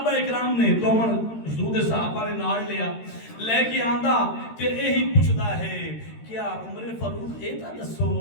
اکرام نے دومن حضور صحابہ نے نال لیا لے کے آندا تے یہی پوچھدا ہے کیا عمر فاروق اے تا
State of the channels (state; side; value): late; right; 13 ms